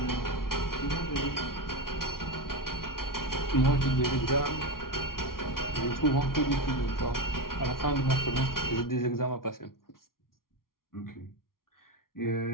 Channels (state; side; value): late; right; 0.92 ms